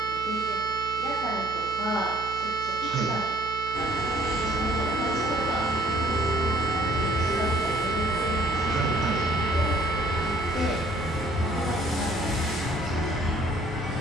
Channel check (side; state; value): right; noise; hum, 14 dB below the sound